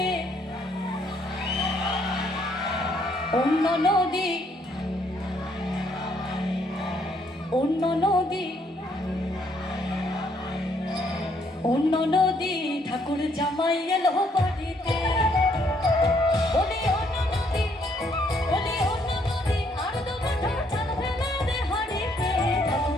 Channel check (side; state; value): both; normal; correlation 0.69